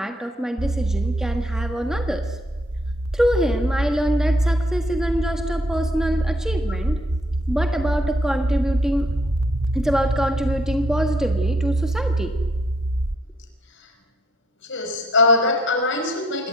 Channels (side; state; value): both; normal; correlation 0.66